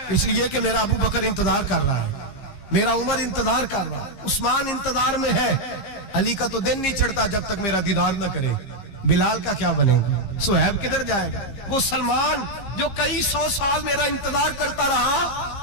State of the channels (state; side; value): late; right; 15 ms